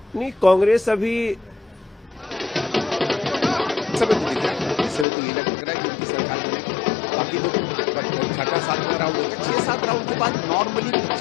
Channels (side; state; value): right; drops out; at 5.1 s